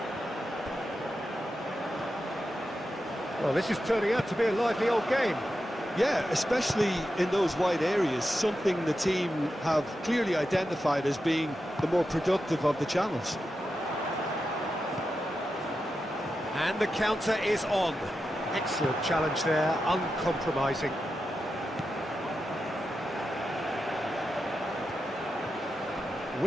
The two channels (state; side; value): normal; both; correlation 0.89